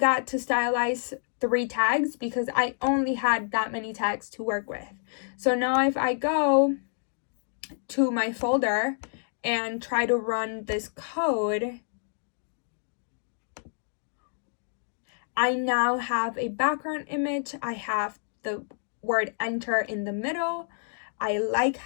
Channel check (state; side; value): silent; right; digital silence